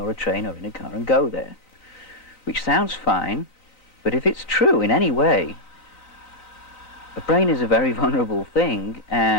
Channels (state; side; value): late; right; 3.9 ms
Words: a train or in a car and go there. Which sounds fine, but if it's true in any way, the brain is a very vulnerable thing,